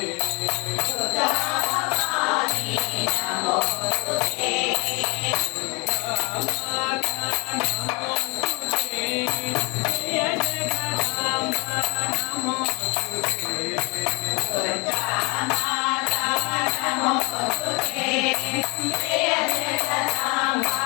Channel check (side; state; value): right; quieter; 28.9 dB